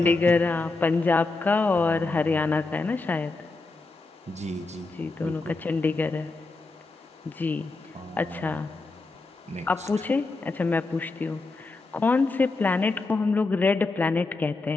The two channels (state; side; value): quieter; right; 3.5 dB